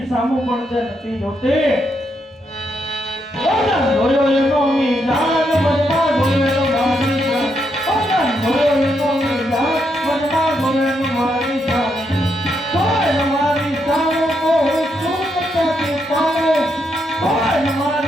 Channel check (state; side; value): normal; both; correlation 0.79